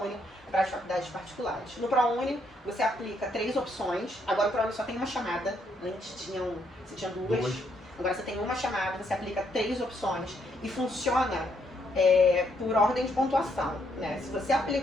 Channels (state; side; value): normal; both; correlation 0.73